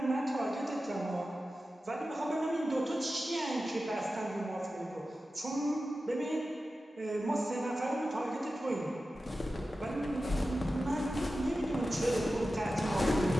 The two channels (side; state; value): both; normal; correlation 0.93